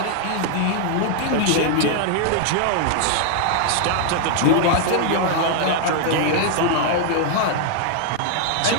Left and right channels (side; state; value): both; different; correlation 0.00